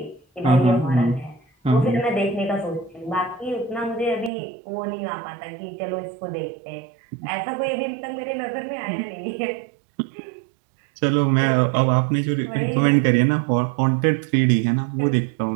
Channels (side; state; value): left; drops out; at 4.3 s